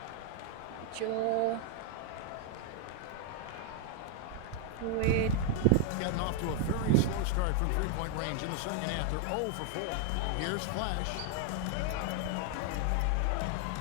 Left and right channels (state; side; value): different; both; correlation 0.00